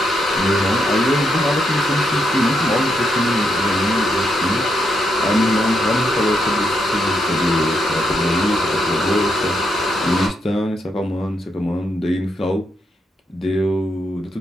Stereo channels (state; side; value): normal; both; correlation 0.80